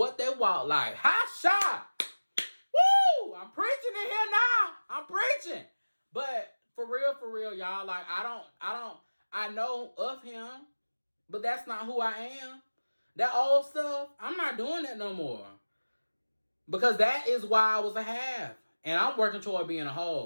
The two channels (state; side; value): inverted; both; correlation -1.00